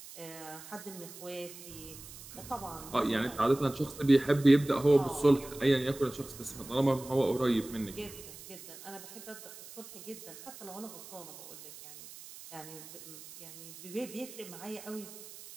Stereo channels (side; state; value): right; noise; hiss, 15 dB below the sound